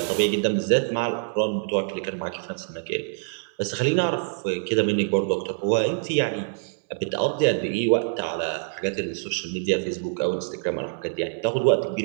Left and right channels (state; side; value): silent; left; 62 dB below the other